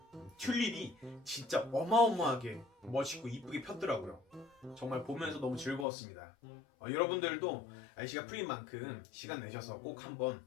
튤립이 진짜 어마어마하게 멋있고 이쁘게 폈더라고요. 정말 보면서 너무 즐거웠습니다. 여러분들도 날씨가 풀린 만큼 시간 내셔서 꼭 한번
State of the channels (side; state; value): right; drops out; at 5.9 s